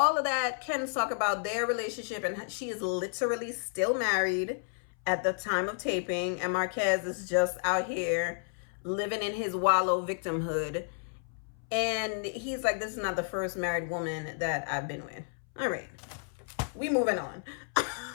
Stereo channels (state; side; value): silent; right; 57 dB below the other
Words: of that, Ken's talk about their relationship, and she is literally still married at the time of taping. And Marquez is just out here living in his wallow victimhood. And he's like, this is not the first married woman that I've been with. All right. We moving on.